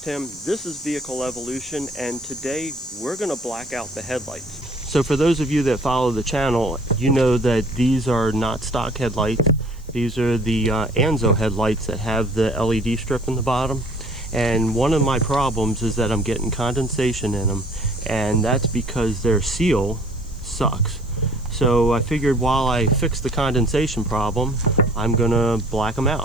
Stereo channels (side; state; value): right; noise; hiss, 30 dB below the sound